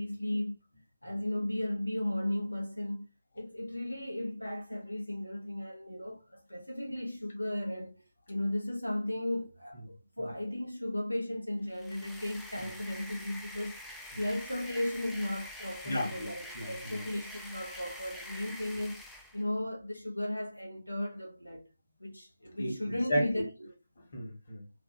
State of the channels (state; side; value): inverted; both; correlation -0.94